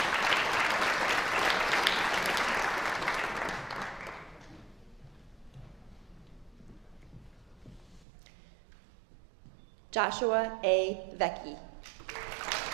Joshua A. Vecchi.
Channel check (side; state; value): left; drops out; at 8.1 s